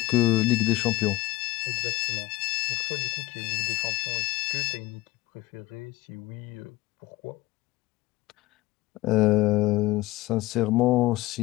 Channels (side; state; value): right; quieter; 18.7 dB